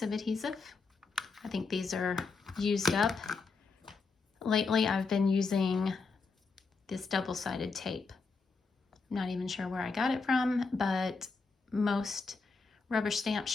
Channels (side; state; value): right; quieter; 4.5 dB